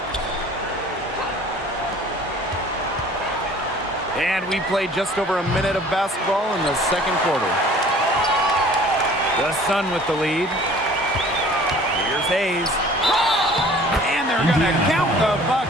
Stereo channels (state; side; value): normal; both; correlation 0.50